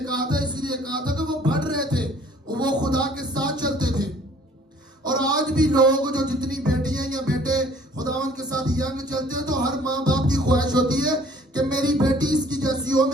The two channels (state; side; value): normal; both; correlation 0.55